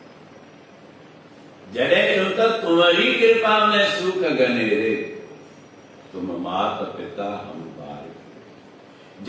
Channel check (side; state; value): both; identical; correlation 1.00